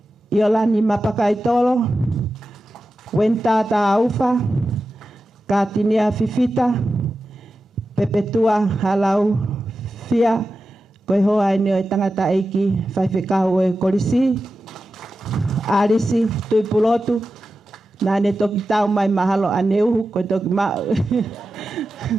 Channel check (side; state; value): both; normal; correlation 0.92